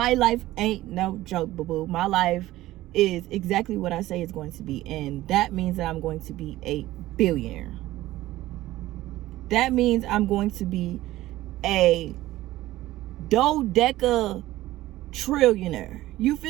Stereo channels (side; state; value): left; quieter; 16.2 dB